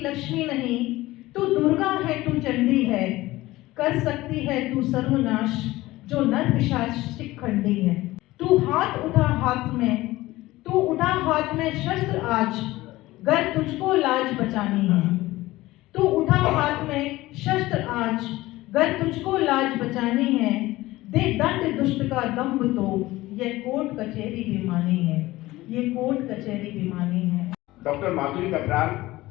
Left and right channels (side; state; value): right; quieter; 18.1 dB